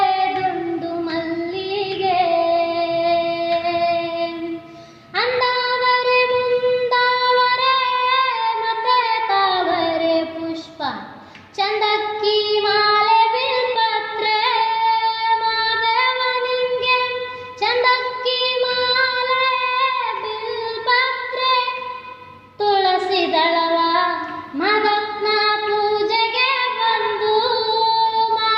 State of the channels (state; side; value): identical; both; correlation 1.00